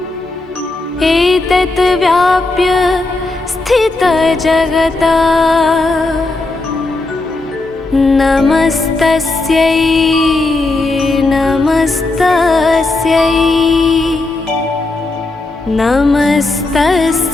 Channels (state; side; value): quieter; right; 3.1 dB